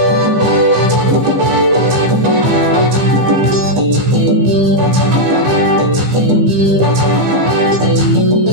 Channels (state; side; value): late; left; 15 ms